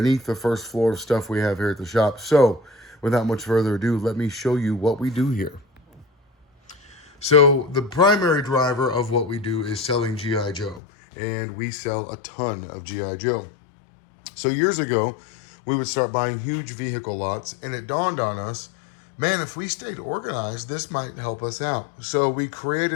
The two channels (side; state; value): right; drops out; at 10.8 s